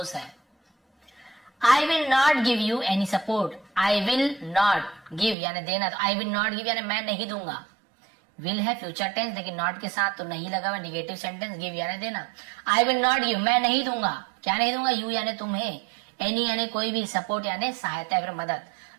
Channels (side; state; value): left; drops out; at 5.4 s